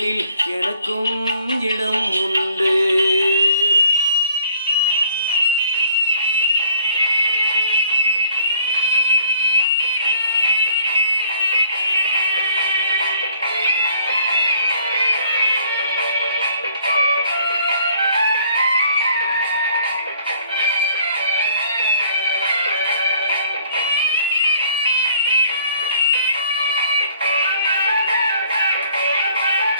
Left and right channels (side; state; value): both; inverted; correlation -0.59